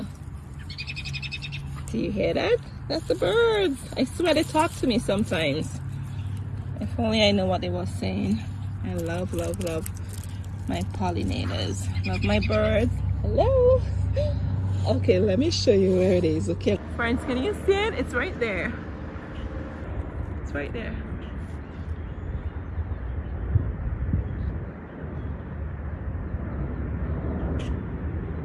Do you hear that? That's the birds. I swear they talk to me sometimes. If only I know what they were saying. I love, love, love my pollinators. Love my birds. Hello. Okay, let me show you where it is. Okay, friends, can you see it? It's right there. It's right there.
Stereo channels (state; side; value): identical; both; correlation 1.00